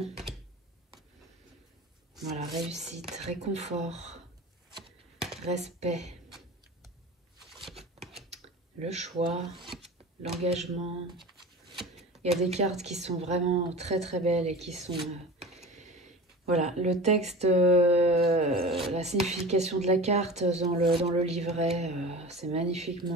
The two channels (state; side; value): normal; both; correlation 0.35